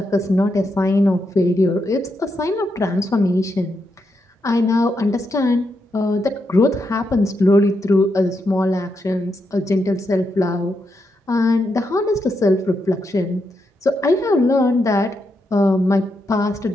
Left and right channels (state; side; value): normal; both; correlation 0.83